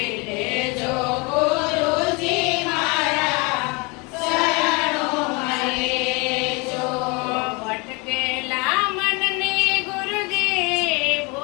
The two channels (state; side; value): quieter; right; 28.7 dB